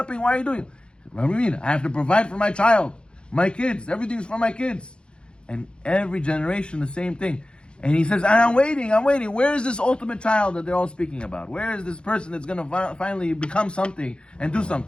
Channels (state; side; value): late; right; 0.054 ms